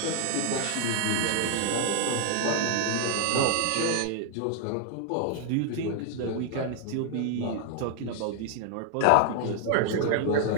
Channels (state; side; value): different; both; correlation 0.00